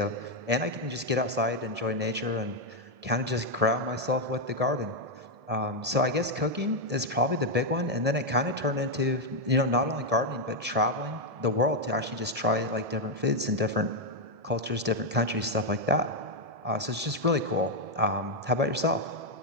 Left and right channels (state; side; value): late; left; 1.7 ms